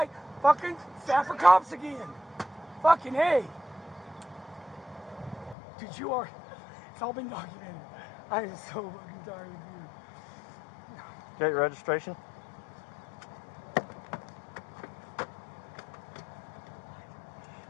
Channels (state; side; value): drops out; right; at 5.6 s